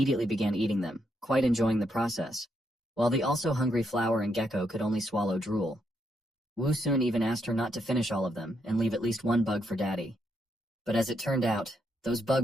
began eating them, quite enjoying the process, while the also hungry flower and gecko could only swallow drool. Wu Sun even asked her not to finish all of them and leave at least one bug for Daddy. But as it turned out, those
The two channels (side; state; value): both; normal; correlation 0.78